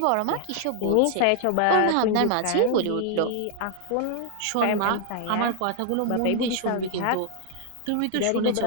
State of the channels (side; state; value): both; different; correlation 0.00